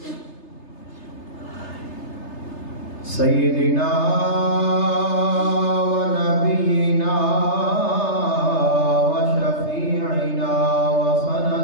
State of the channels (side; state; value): right; late; 3.3 ms